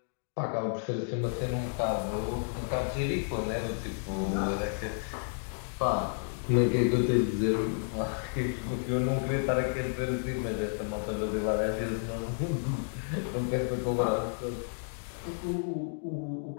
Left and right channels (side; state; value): right; silent; digital silence